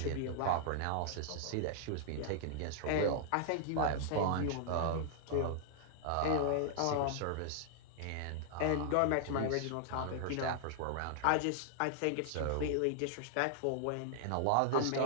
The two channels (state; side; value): different; both; correlation -0.01